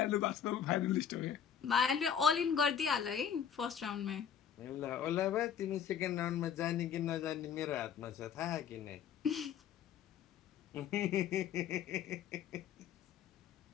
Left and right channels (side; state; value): right; quieter; 8.3 dB